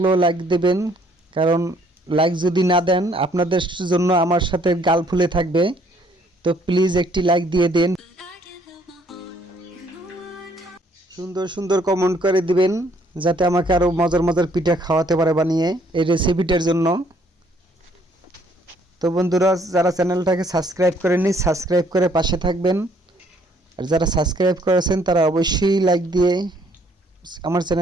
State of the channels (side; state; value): both; normal; correlation 0.64